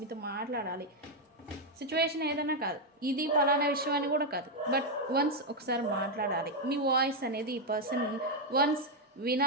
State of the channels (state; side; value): normal; both; correlation 0.01